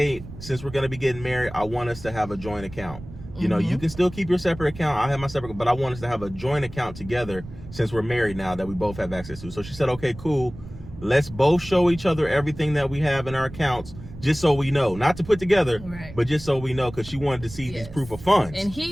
since we're going to be getting married, I want us to have a joint account. You can still keep your separate account. I have my separate, but I want us to have a joint account together since we're married now that we both have access to. So she said, okay, cool. Let's both show each other everything that we have in our accounts, just so we know. Not to put together, but just so we know, because she wanted to see these proof of funds. And he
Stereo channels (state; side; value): noise; right; rumble, 15 dB below the sound